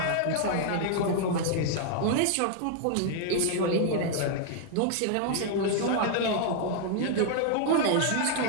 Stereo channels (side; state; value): both; different; correlation -0.01